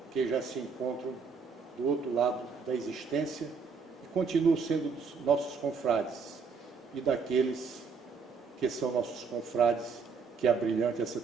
que já se encontram do outro lado da existência e continuam sendo nossos confrades, e daqueles que são nossos confrades que abrilhante essa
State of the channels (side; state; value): left; quieter; 5.3 dB